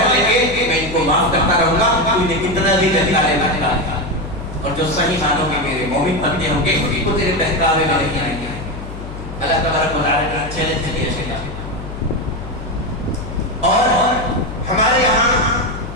لیں گے میں ان کو معاف کرتا رہوں گا. انہیں کتنا بھی بہکالے گا, اور جو صحیح معنوں میں میرے مومن بندے ہوں گے وہ تیرے بہکاوے میں نہیں آئیں گے. اللہ تبارک و تعالیٰ نے چیلنج دیا شیطان. اور ہمارے یہاں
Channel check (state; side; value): noise; left; hum, 10 dB below the sound